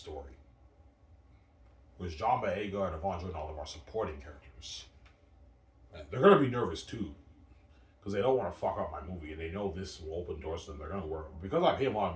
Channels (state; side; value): identical; both; correlation 1.00